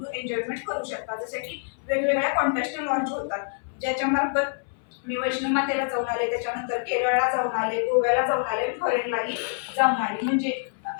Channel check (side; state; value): right; silent; 61 dB below the other